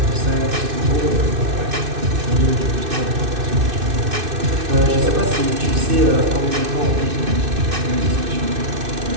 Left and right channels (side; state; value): left; late; 2.6 ms